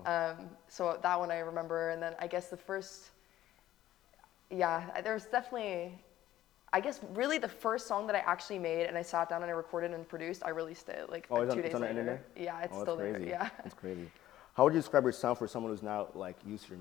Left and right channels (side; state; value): right; quieter; 13.7 dB